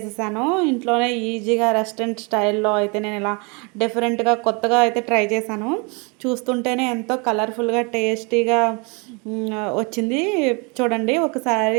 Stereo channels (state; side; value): quieter; left; 31.2 dB